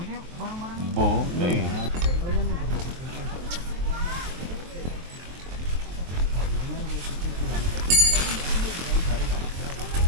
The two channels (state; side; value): late; left; 23 ms